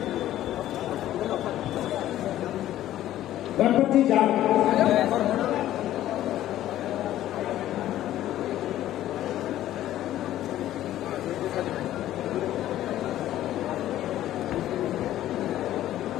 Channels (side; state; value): right; quieter; 13.2 dB